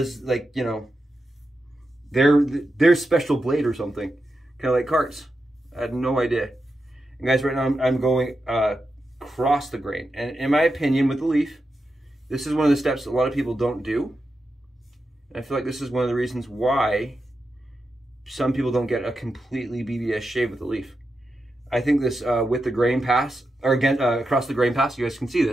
like, you know, their special blade or something, kind of like carts. I had no idea. And guys, right now I'm going across the grain, and in my opinion, with the Leaf, this is one of the steps that a lot of people don't do. And I feel like this is one of the reasons why some people don't get a completely BBS shave with the Leaf. I think this with the grain pass, or again across the grain pass, you guys can see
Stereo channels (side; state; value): both; normal; correlation 0.88